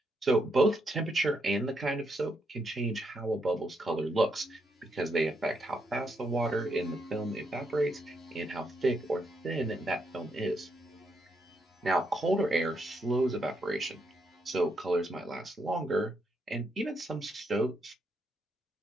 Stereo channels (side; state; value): both; normal; correlation 0.78